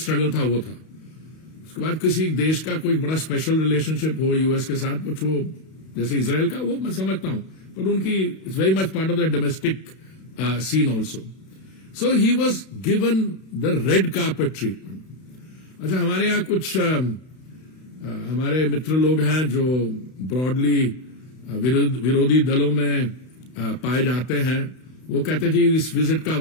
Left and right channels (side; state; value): right; late; 32 ms